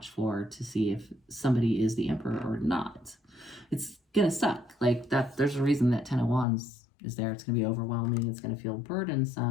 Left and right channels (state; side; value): drops out; right; at 6.5 s